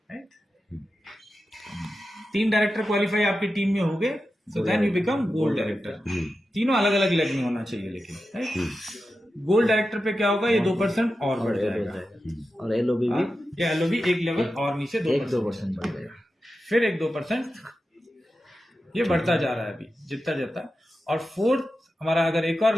right? 3 director qualify आपकी टीम में हो गए, so then you become gold director. तीनों अलग अलग लेवल में होना चाहिए लेकिन, राइट? गोल्ड डायरेक्टर पे क्या होगा, ये 2% और बढ़ जाएगा, और एलओबी भी ये एलओबी एक लेवल और नीचे 2% बढ़ जाएगा, फिर एक 2%, ये बढ़ता जा रहा है अभी जितना जाता। और फोर्थ हमारा अगर एक और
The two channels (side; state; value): both; normal; correlation 0.91